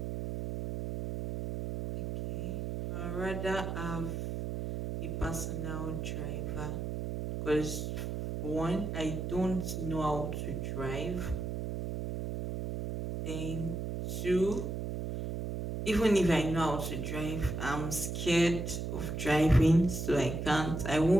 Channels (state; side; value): noise; right; hum, 4 dB below the sound